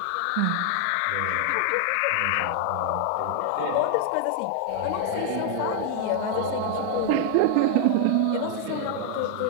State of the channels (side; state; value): both; different; correlation 0.00